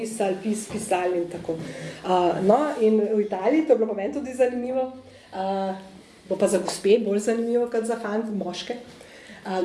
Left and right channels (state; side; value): identical; both; correlation 1.00